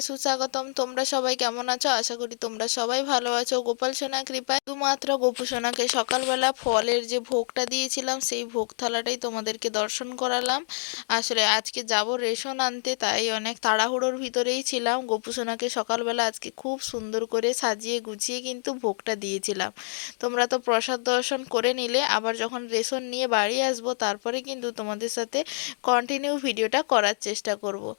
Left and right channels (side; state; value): right; silent; digital silence